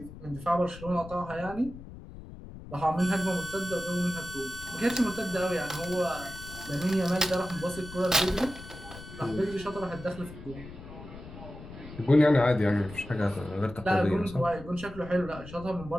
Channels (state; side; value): noise; left; rumble, 14 dB below the sound